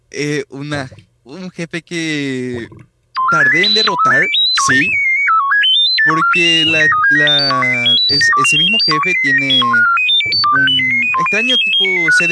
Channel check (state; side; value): identical; both; correlation 1.00